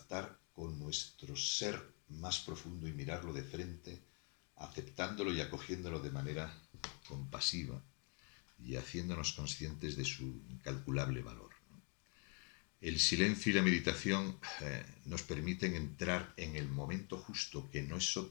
con nuestro ser más profundo y mirarlo de frente, aceptándolo y acogiéndolo de manera compasiva y haciéndonos conscientes de su incalculable valor. El silencio y la meditación nos permiten entrar en el momento justo, que no es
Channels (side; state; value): right; quieter; 37.1 dB